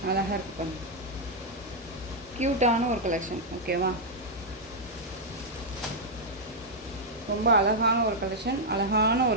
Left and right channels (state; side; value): normal; both; correlation -0.03